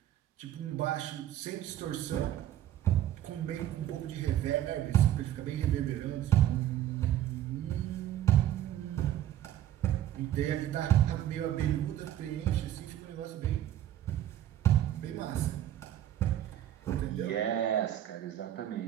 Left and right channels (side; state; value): left; quieter; 12.0 dB